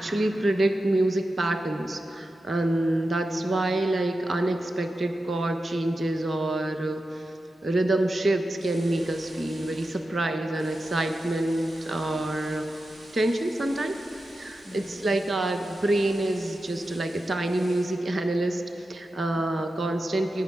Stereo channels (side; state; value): both; normal; correlation 0.91